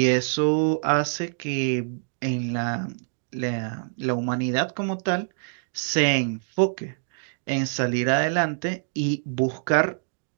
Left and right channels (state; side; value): silent; left; digital silence